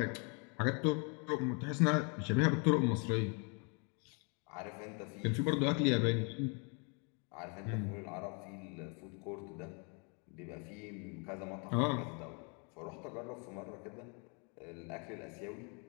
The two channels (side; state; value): right; quieter; 35.5 dB